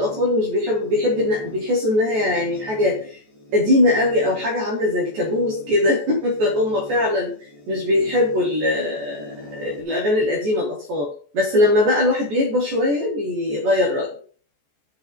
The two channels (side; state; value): left; late; 14 ms